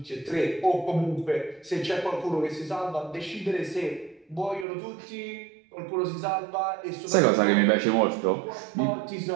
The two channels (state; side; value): drops out; left; at 4.7 s